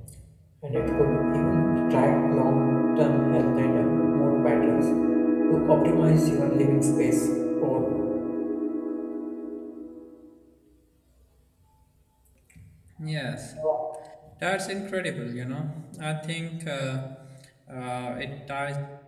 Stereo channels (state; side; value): identical; both; correlation 1.00